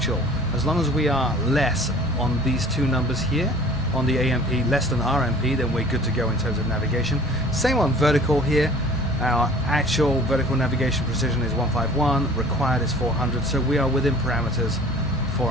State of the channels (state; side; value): normal; both; correlation 0.48